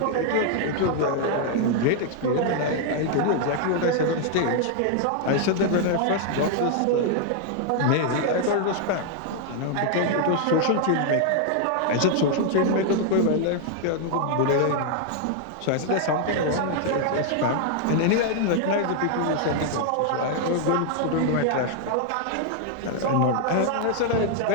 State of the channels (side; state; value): both; different; correlation 0.00